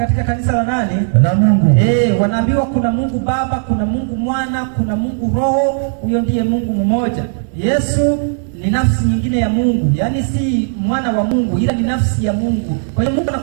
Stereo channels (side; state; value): left; silent; 69 dB below the other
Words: kanisa la nani? La Mungu. Wanaambiwa kuna Mungu Baba, kuna Mungu Mwana, kuna Mungu Roho. Huyo ndiye Mungu mmoja. Yesu ni nafsi nyingine ya Mungu, yaani si mwana wa Mungu, ila ni nafsi ya Mungu. Kwa hiyo Mungu